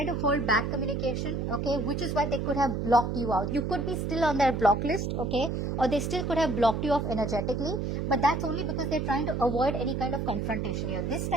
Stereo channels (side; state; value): right; noise; hum, 1 dB below the sound